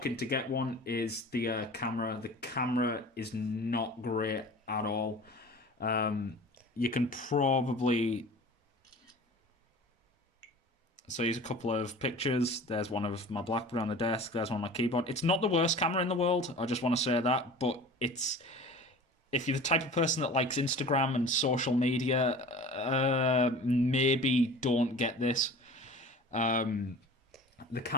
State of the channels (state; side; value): normal; both; correlation 0.40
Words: to get one, is the camera. The camera is not great at all. You can probably so here's a couple of pictures. There's one of my BlackBerry on the desk. There's one on my keyboard. It's not the worst camera in the world. I just want to say that, but it's if you're the type of person that likes Instagram and social media, maybe don't get this. Um, the